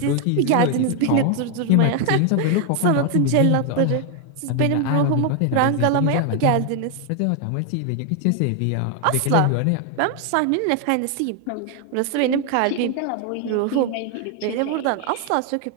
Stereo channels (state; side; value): different; both; correlation 0.00